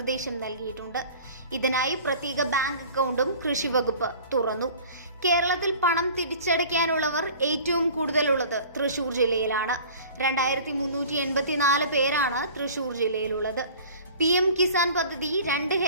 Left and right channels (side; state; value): both; inverted; correlation -0.44